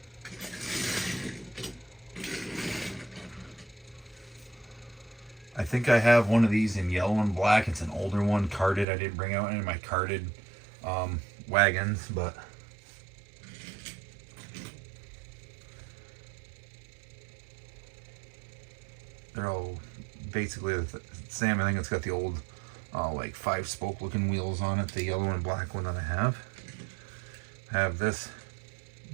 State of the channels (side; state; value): left; drops out; at 8.8 s